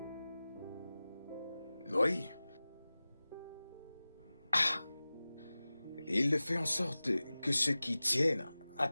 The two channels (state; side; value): inverted; both; correlation -0.97